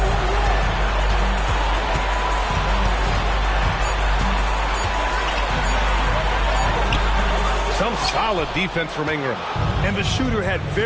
Some solid defense from Ingram. And the shooter had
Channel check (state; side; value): identical; both; correlation 1.00